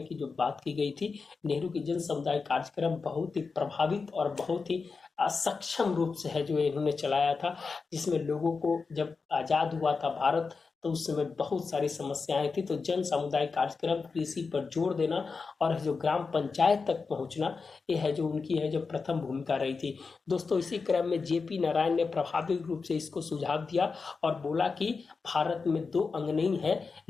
की जो बात की गई थी। नेहरू की जन समुदाय कार्यक्रम बहुत ही प्रभावित और बहुत ही असक्षम रूप से है जो इन्होंने चलाया था, जिसमें लोगों को जब आजाद हुआ था भारत तो उस समय बहुत सारी समस्याएं थी। तो जन समुदाय कार्यक्रम, कृषि पर जोर देना और जो ग्राम पंचायत तक पहुंचना, ये है जो उनकी है जो प्रथम भूमिका रही थी दोस्तों। इसी क्रम में जेपी नारायण ने प्रभावी रूप से इसको सुझाव दिया और बोला कि भारत में 2 अंग नहीं है,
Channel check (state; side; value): quieter; right; 4.7 dB